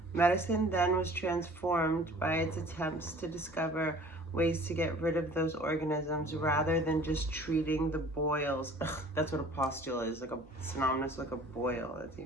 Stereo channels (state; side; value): normal; both; correlation 0.49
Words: Medicine then was transformed by its attempts to discover ways to get rid of those organisms rather than just treating the boils. Ugh, that's what a pustule is, like a synonymous like a boil. That's